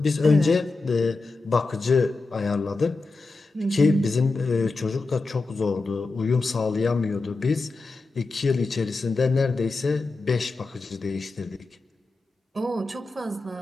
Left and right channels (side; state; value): right; quieter; 3.5 dB